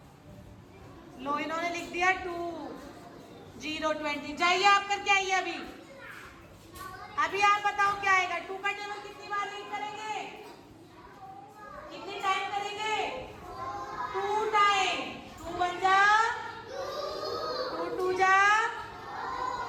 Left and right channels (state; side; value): identical; both; correlation 1.00